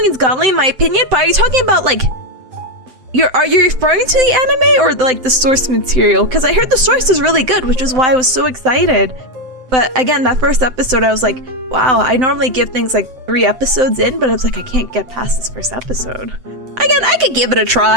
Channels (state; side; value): late; left; 7.8 ms